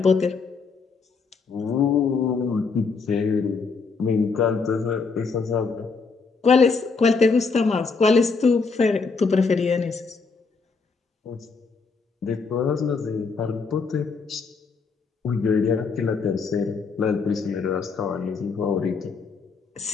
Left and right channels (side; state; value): right; quieter; 4.7 dB